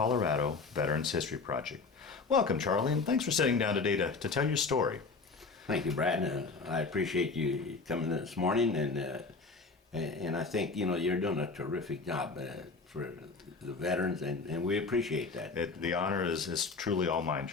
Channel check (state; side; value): quieter; right; 4.2 dB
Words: Veterans History Project. Welcome, Charlie, and thanks for sitting down today to tell your story. Thank you, Brad. I appreciate you coming this morning, and I think you're doing a terrific job for the veterans, and we appreciate that. The honor is truly all mine,